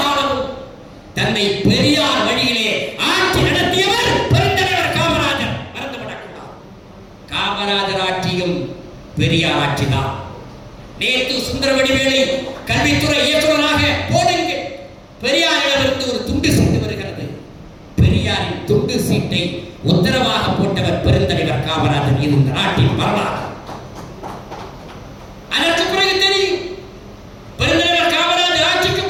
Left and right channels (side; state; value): both; identical; correlation 1.00